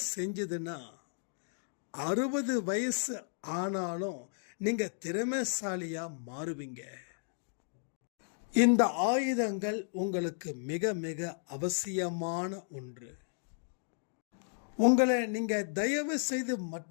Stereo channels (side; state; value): right; silent; digital silence